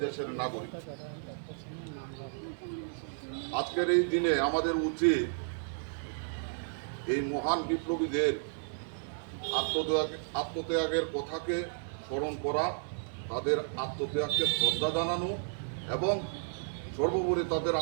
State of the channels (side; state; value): left; silent; 56 dB below the other